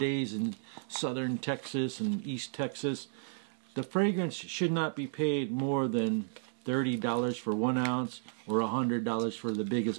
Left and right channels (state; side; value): silent; left; digital silence